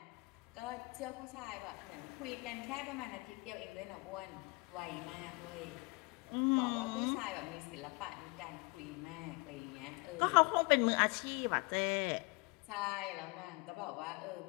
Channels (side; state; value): right; quieter; 28.4 dB